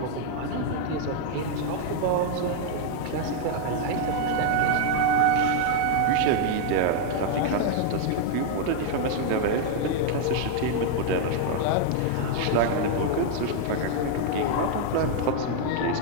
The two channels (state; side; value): different; both; correlation 0.00